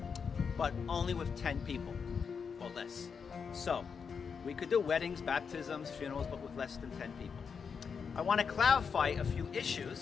but only with 10 people or less. So we could do weddings, baptisms, funerals, but with less than 10 people. I want to clarify a few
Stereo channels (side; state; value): right; quieter; 6.1 dB